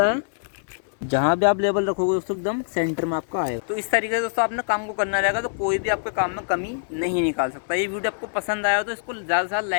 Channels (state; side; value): silent; right; 63 dB below the other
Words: है। जहाँ भी आप लेवल रखोगे दोस्तों एकदम सेंटर में आपका आएगा। तो इस तरीके से दोस्तों आपने काम को करना रहेगा, तो कोई भी आपके काम में कमी नहीं निकाल सकता। ये वीडियो आपको पसंद आया तो इसको ज़्यादा से ज़्यादा